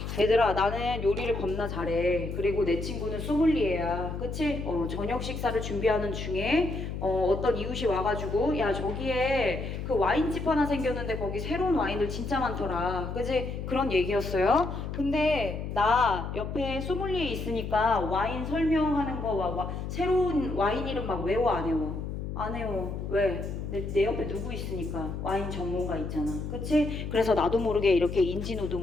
얘들아 나는 요리를 겁나 잘해. 그리고 내 친구는 소믈리에야. 그치? 저녁 식사를 준비하는 중에 어떤 이웃이 와가지고 야 저기에 그 와인집 하나 생겼는데 거기 새로운 와인들 진짜 많더라. 그치? 그런 얘기였어요. 근데 나 옆에 소믈리에 있으니까 와인 설명하는 거 새로운 와인 이름 막 외워 안 외워? 안 해요. 왜? 내 옆에 누구 있으니까. 와인 전문가 있잖아. 그치? 그래서 나도 모르게 이렇게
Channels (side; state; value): left; noise; hum, 5 dB below the sound